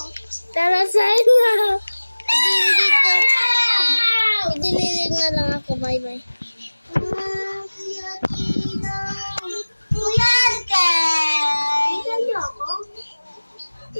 Tara, Zainab. Dito. Idililig na lang ako. Bye-bye. Kuya Arkay. Ilan niyo ako?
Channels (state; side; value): inverted; both; correlation -1.00